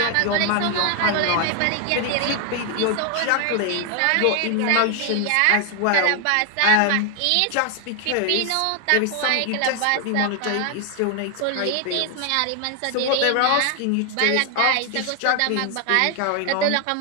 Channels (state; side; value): different; both; correlation 0.00